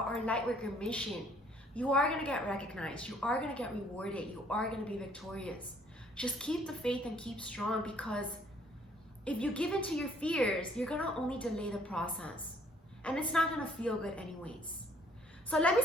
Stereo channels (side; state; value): both; normal; correlation 0.62